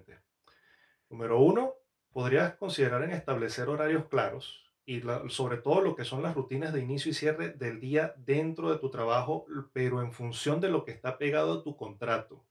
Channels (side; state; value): both; identical; correlation 1.00